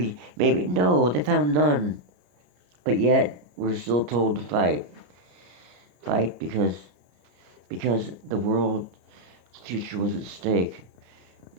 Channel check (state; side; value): late; left; 33 ms